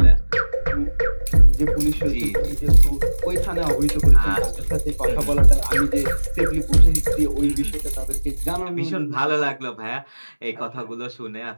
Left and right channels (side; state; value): both; inverted; correlation -1.00